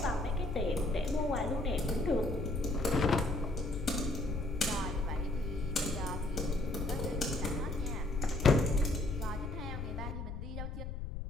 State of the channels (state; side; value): noise; left; rumble, 6 dB below the sound